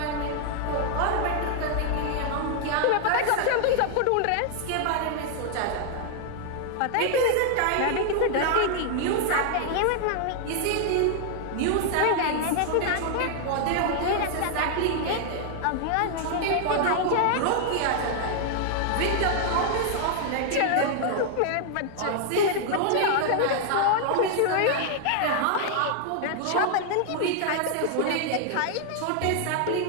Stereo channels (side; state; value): both; different; correlation 0.00